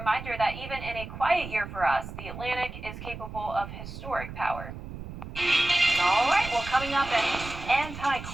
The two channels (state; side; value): noise; right; rumble, 11 dB below the sound